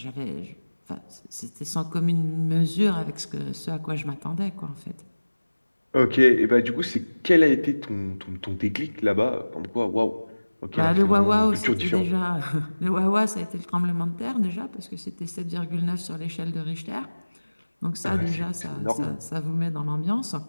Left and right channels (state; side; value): inverted; both; correlation -1.00